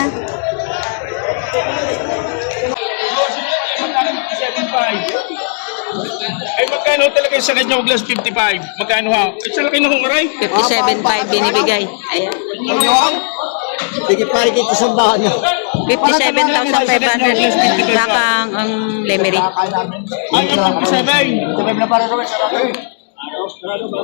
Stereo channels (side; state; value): right; silent; digital silence